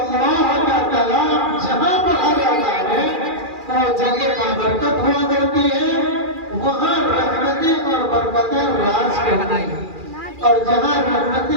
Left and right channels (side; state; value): left; late; 2.4 ms